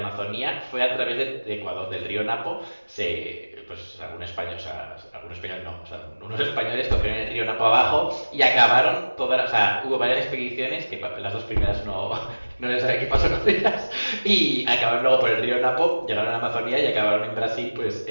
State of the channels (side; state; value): both; inverted; correlation -1.00